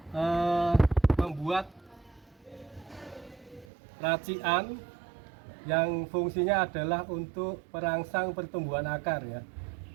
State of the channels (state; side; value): drops out; left; at 3.7 s